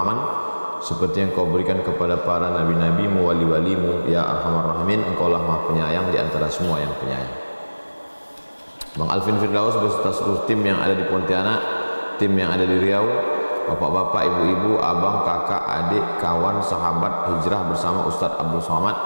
seperti yang kau berikan kepada para nabi-nabimu, wali-walimu, ya arhamar rahimin. Engkau lah maha penyayang di antara semua yang penyayang. Bang Alvin Firdaus beserta seluruh tim yang ada di Pontianak, tim yang ada di Riau, bapak-bapak, ibu-ibu, abang, kakak, adik, kawan, sahabat hijrah bersama Ustadz Abdul Somad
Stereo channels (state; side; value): inverted; both; correlation -1.00